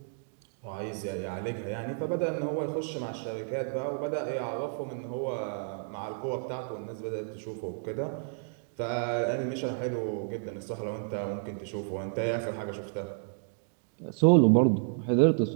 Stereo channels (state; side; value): silent; left; digital silence